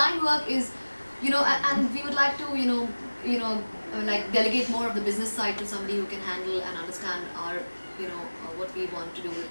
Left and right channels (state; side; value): inverted; both; correlation -1.00